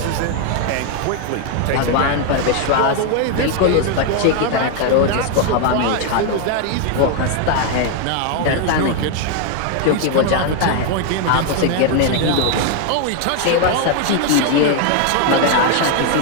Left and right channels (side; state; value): both; different; correlation 0.00